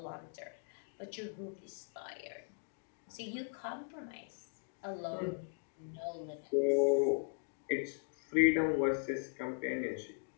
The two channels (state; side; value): silent; right; digital silence